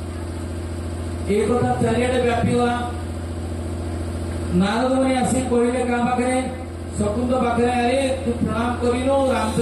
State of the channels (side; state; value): both; identical; correlation 1.00